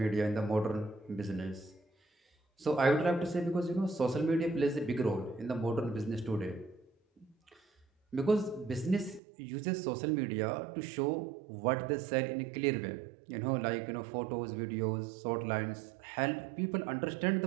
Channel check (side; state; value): left; drops out; at 9.2 s